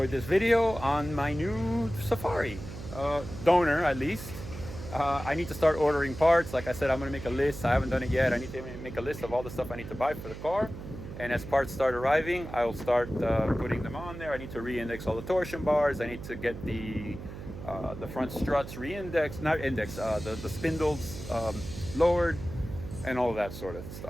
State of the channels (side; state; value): right; noise; hum, 11 dB below the sound